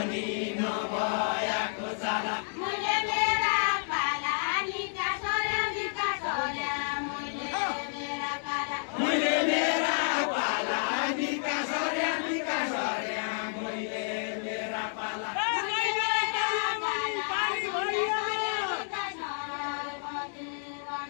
पनि नभएको जाला मैले मेरा पाला निका सोर्या निका सोर्या मैले मेरा पाला मैले मेरा पाला निका सर्या मैले मेरा पाला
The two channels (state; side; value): silent; right; digital silence